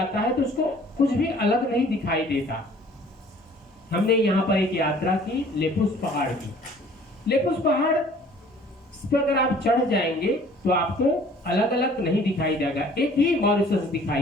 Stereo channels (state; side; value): normal; both; correlation 0.53